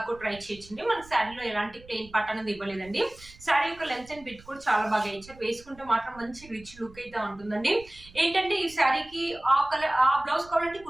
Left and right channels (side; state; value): right; noise; rumble, 22 dB below the sound